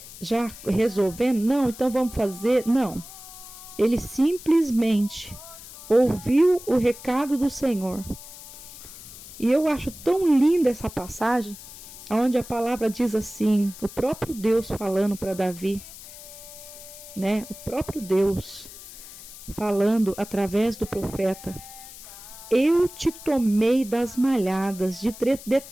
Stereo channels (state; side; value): noise; left; hiss, 16 dB below the sound